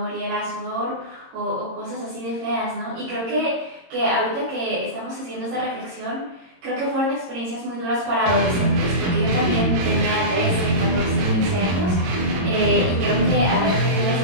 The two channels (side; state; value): left; late; 22 ms